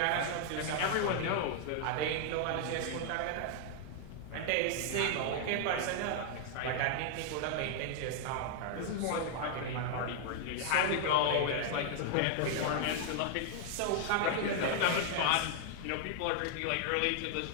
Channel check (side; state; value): both; different; correlation 0.00